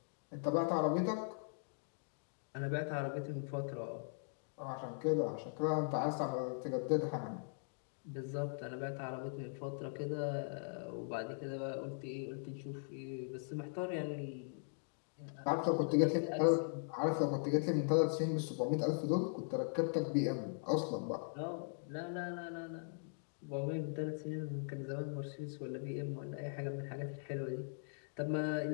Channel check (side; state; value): right; silent; digital silence